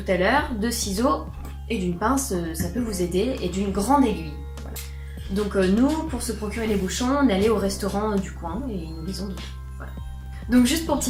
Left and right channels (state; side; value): identical; both; correlation 1.00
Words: à l'heure, de ciseaux et d'une pince, ça peut vous aider, et d'une grande aiguille. Voilà. Donc nous, pour se procurer les bouchons, on est allé au restaurant du coin et ils nous les ont donnés. Donc juste pour